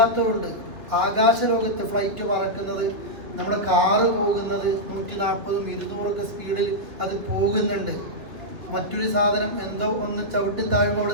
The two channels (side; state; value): left; late; 2.9 ms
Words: ആകാശലോകത്ത് ഫ്ലൈറ്റ് പറക്കുന്നത്, നമ്മുടെ കാറ് പോകുന്നത് 140 200 സ്പീഡിൽ അത് പോകുന്നുണ്ട്. മറ്റൊരു സാധനം എന്തോ ഒന്ന് ചവിട്ടി താഴുമ്പോൾ